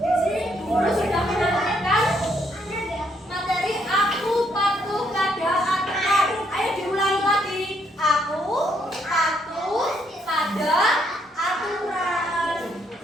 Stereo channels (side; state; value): both; normal; correlation 0.72